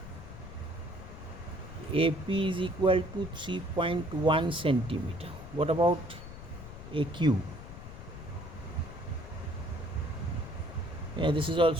AP is equal to 3.1 centimeter. What about AQ? Yeah, this is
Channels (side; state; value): left; noise; rumble, 12 dB below the sound